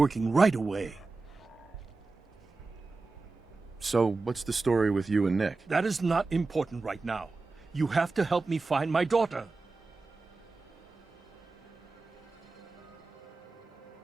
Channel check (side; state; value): left; quieter; 3.7 dB